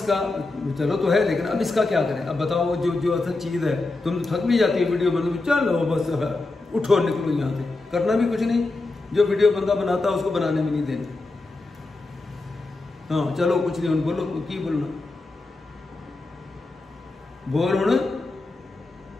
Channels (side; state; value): right; quieter; 3.2 dB